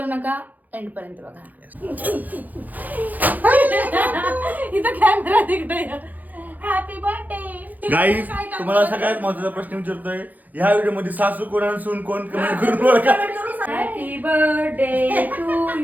नका, एंड पर्यंत बघा. इथं कॅमेरा तिकडे. Happy birthday guys. तुम्हाला सगळ्यात महत्त्वाचा प्रश्न विचारतोय, ह्या व्हिडिओ मध्ये सासू कोण आणि सून कोण कमेंट करून ओळखा. Happy birthday to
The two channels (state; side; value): late; left; 0.082 ms